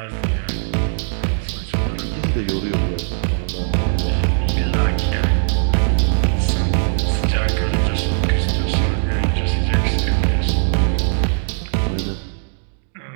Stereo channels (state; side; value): silent; left; digital silence